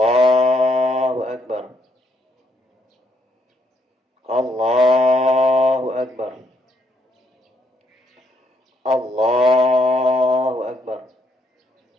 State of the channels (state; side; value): normal; both; correlation 0.73